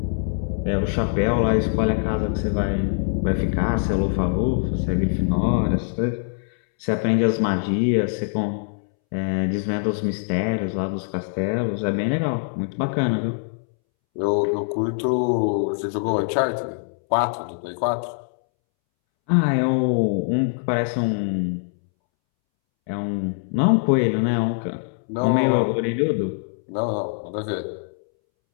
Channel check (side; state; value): right; silent; 63 dB below the other